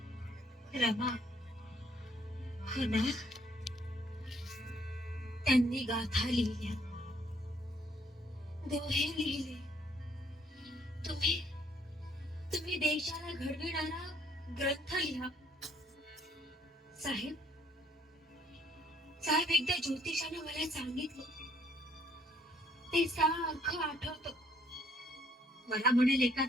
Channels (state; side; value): normal; both; correlation 0.65